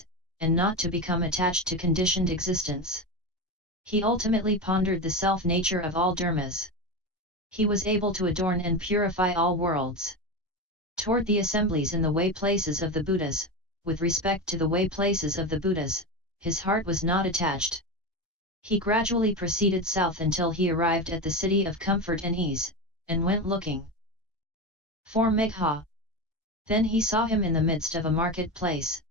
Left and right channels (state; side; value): normal; both; correlation 0.19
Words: and not to become attached to conditioned existence. He ultimately pondered the self-nature of all dharmas. He was able to adorn and purify all worlds. Toward the assemblies in the way places of the Buddhas, with respect to the way places of the Buddhas, his heart was not attached. He gradually proceeded south until he arrived at the city of comfort and ease, and went looking for Megha. Then he saw him in the midst of a marketplace,